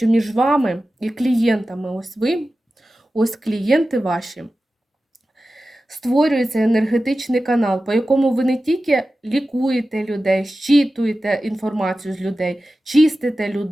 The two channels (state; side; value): normal; both; correlation 0.94